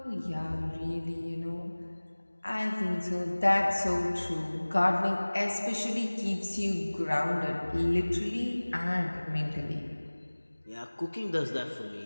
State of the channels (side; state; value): both; inverted; correlation -1.00